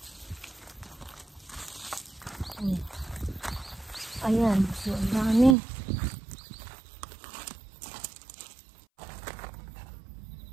Ayan. So ang dami.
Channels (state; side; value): drops out; left; at 5.6 s